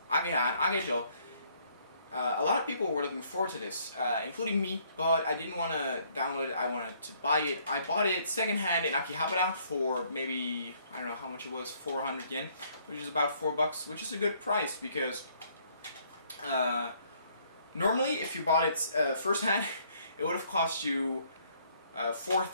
Ageha and Agejo, a lot of people were looking forward to this, including me, but I didn't want to download it, I wanted to buy it. I bought it secondhand in Akihabara for maybe, I don't know how much it was, 400 yen, which is about $4, which is a good price, because normally if you bought it first hand, it would have cost you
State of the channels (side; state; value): both; inverted; correlation -0.65